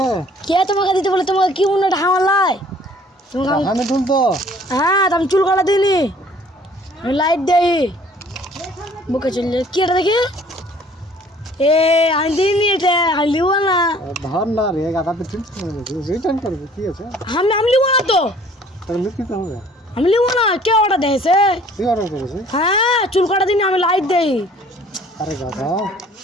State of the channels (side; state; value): both; normal; correlation 0.54